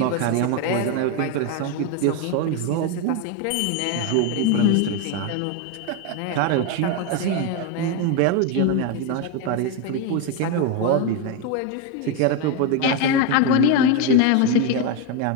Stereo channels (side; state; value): both; different; correlation 0.02